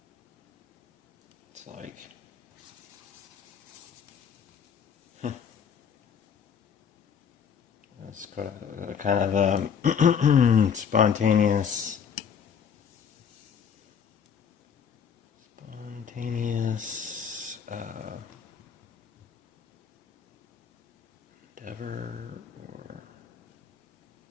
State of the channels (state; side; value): quieter; right; 7.3 dB